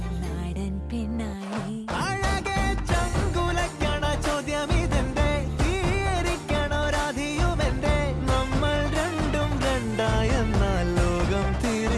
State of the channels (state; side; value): identical; both; correlation 1.00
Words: നാടൻ പെണ്ണായി ചോദ്യമിതെന്റെ തീയരിക്കണോ രാധിയുമെന്റെ നമ്മൾ രണ്ടും രണ്ടായെന്നാൽ ലോകം